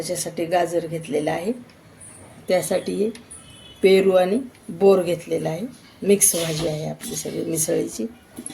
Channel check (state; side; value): identical; both; correlation 1.00